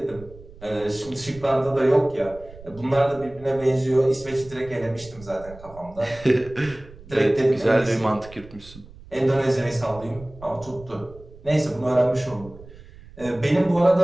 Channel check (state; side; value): noise; right; rumble, 19 dB below the sound